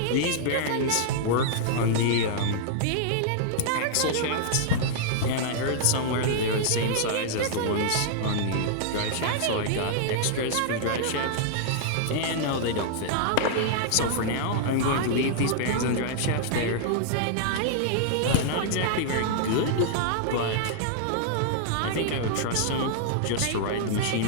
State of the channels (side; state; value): both; different; correlation -0.01